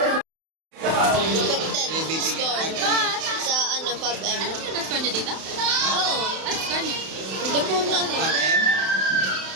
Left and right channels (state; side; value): late; left; 31 ms